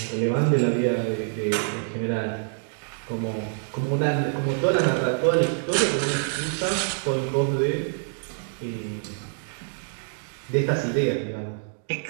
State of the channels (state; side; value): silent; left; digital silence